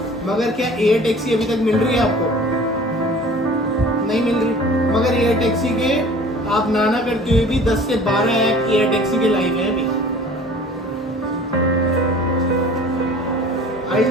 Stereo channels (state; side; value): normal; both; correlation 0.46